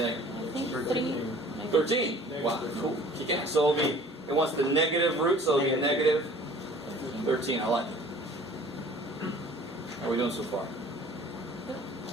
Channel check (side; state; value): both; normal; correlation 0.49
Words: think? I think 13. Wow, cool. Kick ass. So it wants the negative root, so it'll be negative 13. I like it. How are we doing so far?